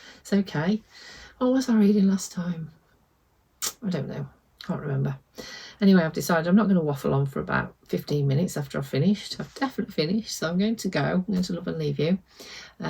It's okay. What was I reading last time? I don't know. Can't remember. Anyway, I've decided I'm not going to waffle on for about 15 minutes after I've finished. I've definitely finished, so I'm going to go. I'm going to love and leave you.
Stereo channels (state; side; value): identical; both; correlation 1.00